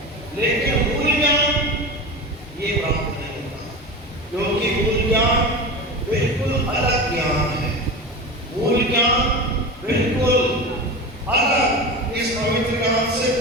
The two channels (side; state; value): both; normal; correlation 0.27